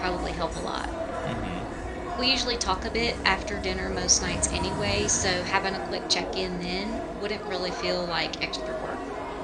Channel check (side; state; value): both; identical; correlation 1.00